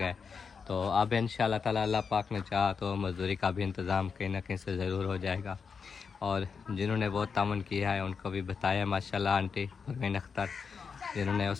तो अब इंशाल्लाह ताला अल्लाह पाक ने चाहा तो मजदूरी का भी इंतज़ाम कहीं ना कहीं से ज़रूर हो जाएगा। और जिन्होंने वो तावन किया है उनको भी बताया माशाल्लाह, आंटी परवीन अख्तर, जिन्होंने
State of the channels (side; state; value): right; quieter; 5.7 dB